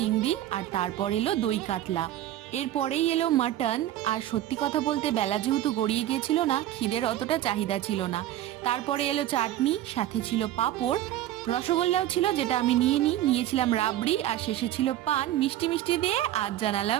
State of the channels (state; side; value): quieter; left; 13.2 dB